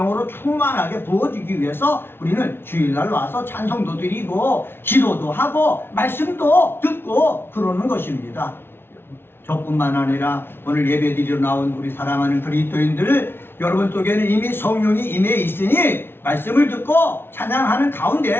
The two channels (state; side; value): late; right; 0.11 ms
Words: 충만하게 부어지기 위해서 우리는 주일날 와서 찬송도 드리고 기도도 하고 말씀도 듣고 그러는 것입니다. 저뿐만 아니라 오늘 예배드리러 나온 우리 사랑하는 그리스도인들 여러분 속에는 이미 성령이 임해 있으니 말씀을 듣고 찬양하는